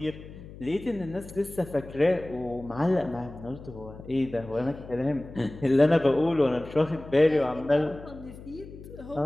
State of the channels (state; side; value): noise; left; hum, 16 dB below the sound